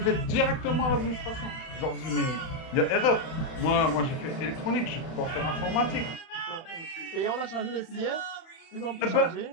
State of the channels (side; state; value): right; late; 31 ms